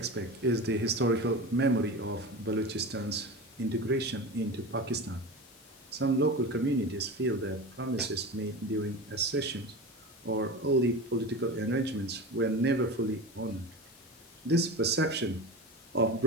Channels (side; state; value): left; noise; hiss, 25 dB below the sound